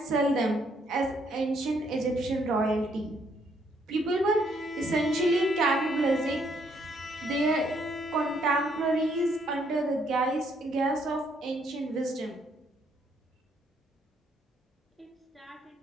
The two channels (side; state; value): both; normal; correlation 0.70